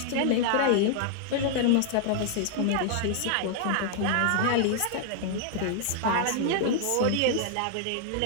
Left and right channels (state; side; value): different; both; correlation -0.01